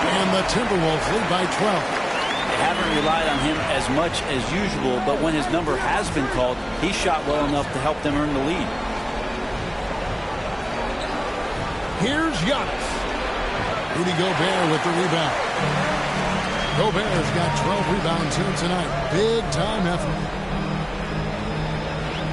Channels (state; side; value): identical; both; correlation 1.00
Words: And the Timberwolves lead by 12. They haven't relied on him as much as usual, but when his number has been called, he shot well enough to help them earn the lead. Here's Giannis. Rudy Gobert with the rebound. Gobert's got 12 rebounds here tonight. Big time effort.